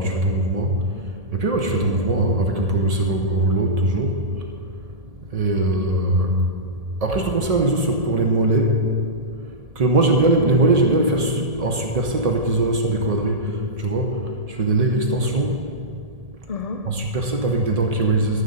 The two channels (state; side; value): late; left; 1.7 ms